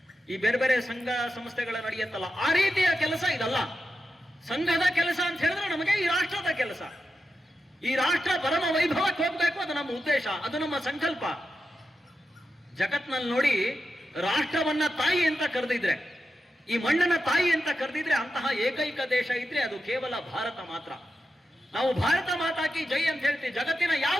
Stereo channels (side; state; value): both; normal; correlation 0.89